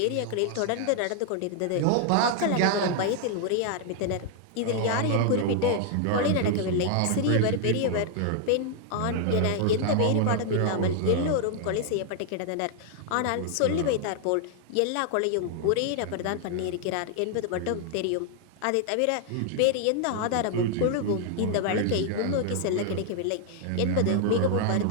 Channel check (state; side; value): different; both; correlation 0.00